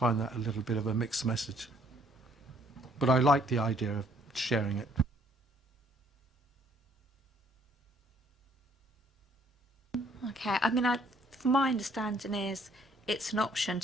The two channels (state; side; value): normal; both; correlation 0.63